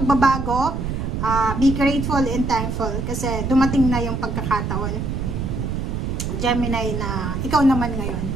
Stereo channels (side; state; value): right; noise; rumble, 2 dB below the sound